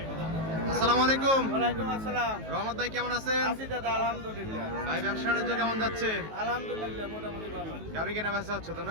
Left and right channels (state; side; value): late; left; 19 ms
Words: আসসালামু আলাইকুম। ওয়ালাইকুম আসসালাম। রহমত ভাই কেমন আছেন? আছি দাদা, আলহামদুলিল্লাহ। ভাই ব্যবসা বাণিজ্য কেমন যাচ্ছে? আলহামদুলিল্লাহ মোটামুটি ভালো। গাভী কেনা বেচা হচ্ছে তো